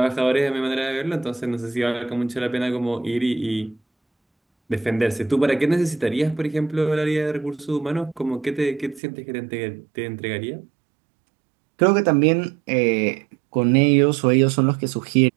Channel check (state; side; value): drops out; left; at 9.0 s